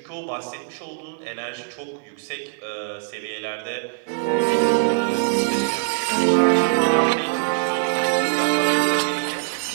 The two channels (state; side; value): silent; left; digital silence